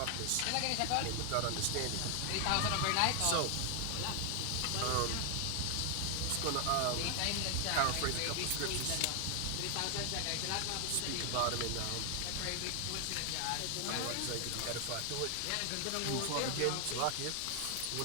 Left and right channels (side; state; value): both; different; correlation 0.00